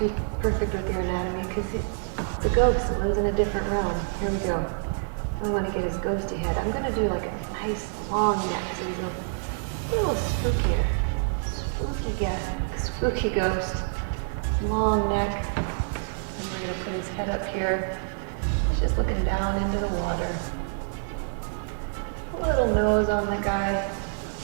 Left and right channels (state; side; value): silent; left; digital silence